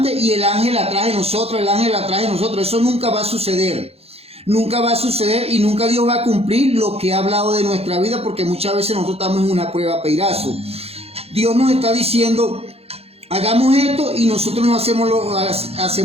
y el ángel atrás de nosotros, Eso nunca va a suceder. Nunca va a suceder y nunca Dios va a cumplir lo que ha hablado de nuestra vida, porque muchas veces nosotros estamos en una prueba peirazo. Dios nos está diciendo, hagamos esto y nosotros no hacemos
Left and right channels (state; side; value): late; left; 0.29 ms